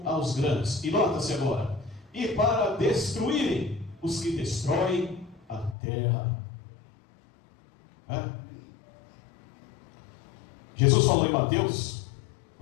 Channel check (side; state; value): right; drops out; at 5.8 s